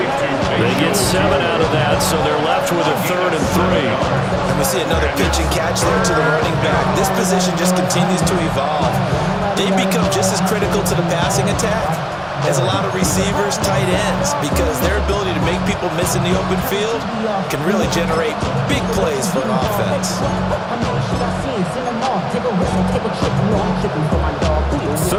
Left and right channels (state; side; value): identical; both; correlation 1.00